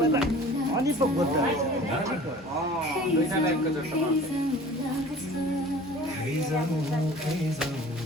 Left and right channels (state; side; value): normal; both; correlation 0.45